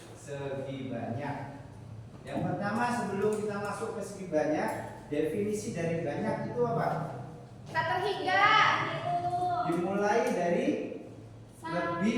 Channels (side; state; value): both; identical; correlation 1.00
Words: segi banyak. Yang pertama, sebelum kita masuk ke segi banyak, definisi dari banyak itu apa? Tak terhingga. Dimulai dari